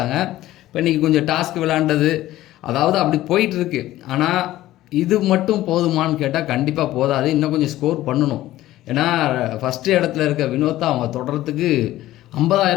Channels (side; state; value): right; quieter; 15.2 dB